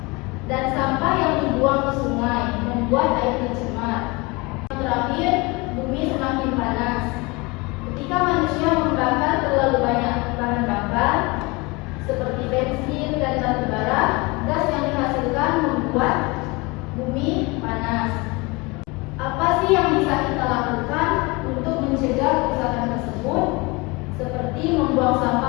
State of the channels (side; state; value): right; quieter; 25.6 dB